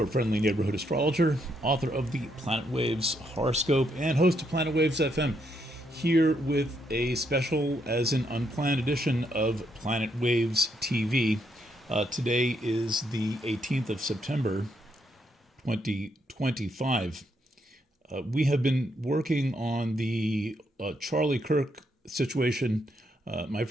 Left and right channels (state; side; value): normal; both; correlation 0.76